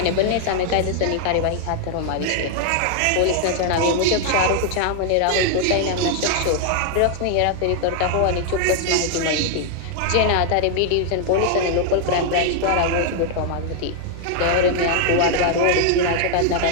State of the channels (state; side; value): different; both; correlation 0.00